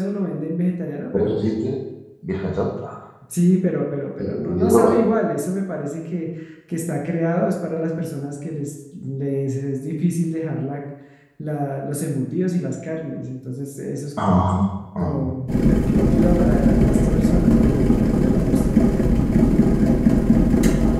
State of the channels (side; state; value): both; identical; correlation 1.00